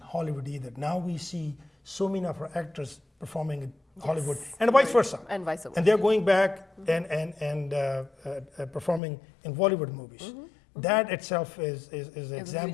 Hollywood either. Now we see so many of our actors performing in Hollywood, and vice versa. And vice versa. And they're going back and performing in Bollywood movies. That itself is an It's a huge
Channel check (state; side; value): drops out; right; at 9.0 s